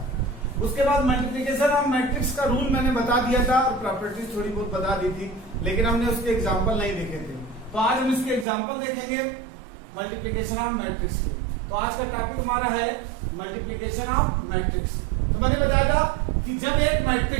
उसके बाद मल्टीप्लिकेशन ऑफ मैट्रिक्स का रूल मैंने बता दिया था और प्रॉपर्टीज थोड़ी बहुत बता दी थी, लेकिन हमने उसके एग्जाम्पल नहीं देखे थे। तो आज हम इसके एग्जाम्पल देखेंगे मल्टीप्लिकेशन ऑफ मैट्रिक्स के। तो आज का टॉपिक हमारा है मल्टीप्लिकेशन ऑफ मैट्रिक्स। तो मैंने बताया था कि जब एक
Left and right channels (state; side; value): drops out; left; at 8.5 s